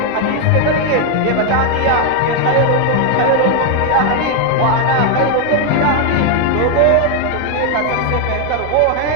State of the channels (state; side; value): different; both; correlation 0.01